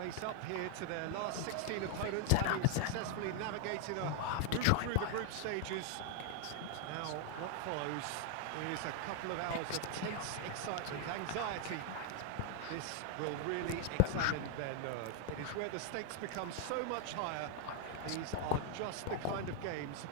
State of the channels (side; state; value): both; different; correlation 0.00